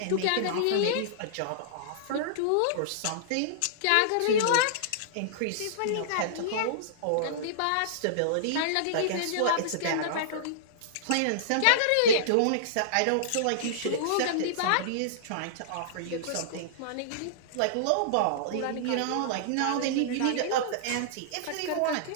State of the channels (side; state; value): both; different; correlation -0.02